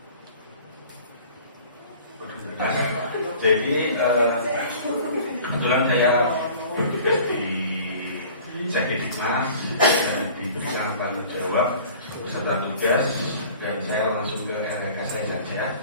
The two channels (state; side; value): inverted; both; correlation -0.46